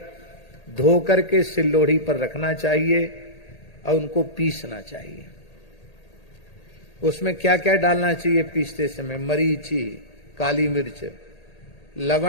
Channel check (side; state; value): right; late; 1.8 ms